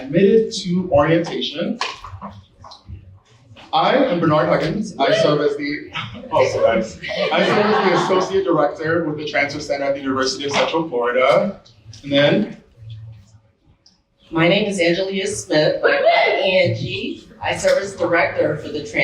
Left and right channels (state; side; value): identical; both; correlation 1.00